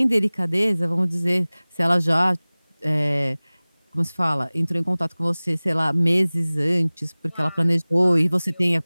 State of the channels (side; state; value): both; inverted; correlation -1.00